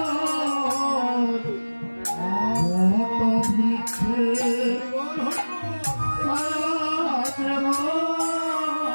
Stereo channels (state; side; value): inverted; both; correlation -1.00